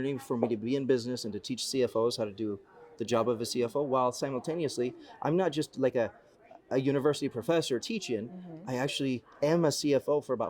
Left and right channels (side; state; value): both; identical; correlation 1.00